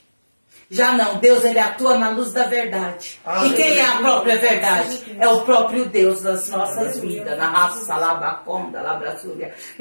Já não, Deus, ele atua na luz da verdade. E quem é a própria verdade? É o próprio Deus das nossas vidas. Na raça, labaconda, labraçúria.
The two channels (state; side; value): inverted; both; correlation -1.00